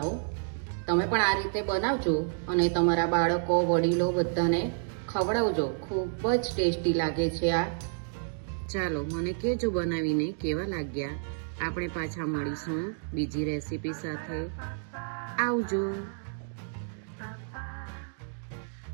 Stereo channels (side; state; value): left; silent; digital silence